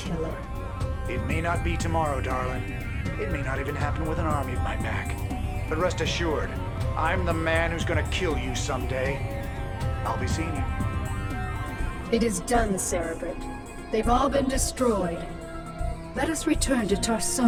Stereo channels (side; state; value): both; identical; correlation 1.00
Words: It may not be tomorrow, darling. It may not even happen with an army at my back. But rest assured, I'm the man who's gonna kill you someday. I'll be seeing you. It is done, Cerebrit. They've all been destroyed. Let us return to